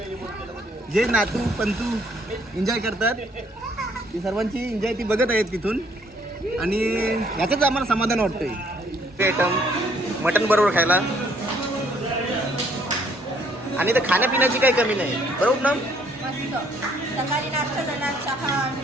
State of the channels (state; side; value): normal; both; correlation 0.65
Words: जे नातू पंतू एन्जॉय करतात ती सर्वांची एन्जॉय ती बघत आहेत तिथून. आणि याचंच आम्हाला समाधान वाटतंय. ते आयटम मटण बरोबर खायला आणि तर खाण्यापिण्याची काही कमी नाही, बरोबर ना? मस्त. सकाळी नाश्ता झाला, चहा,